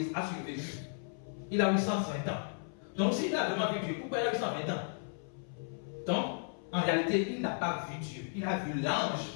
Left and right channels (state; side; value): silent; right; 55 dB below the other